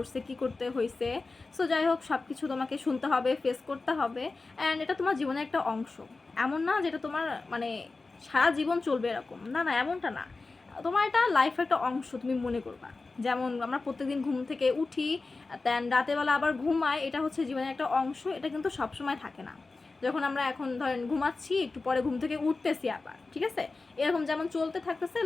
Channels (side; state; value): right; quieter; 3.7 dB